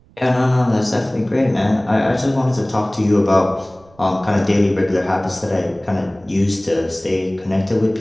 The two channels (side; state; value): right; noise; rumble, 29 dB below the sound